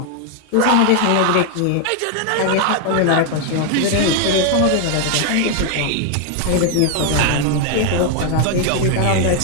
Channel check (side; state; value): both; different; correlation 0.00